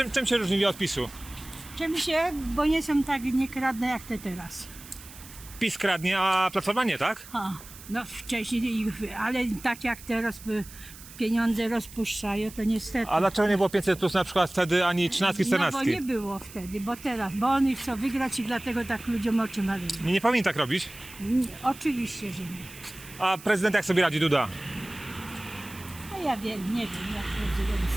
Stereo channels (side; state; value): right; noise; hiss, 17 dB below the sound